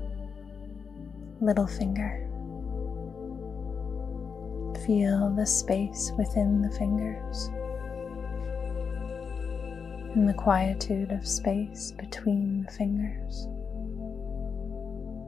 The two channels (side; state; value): right; quieter; 5.9 dB